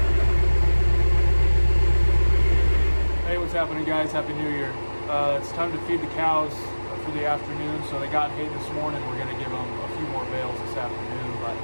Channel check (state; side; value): inverted; both; correlation -1.00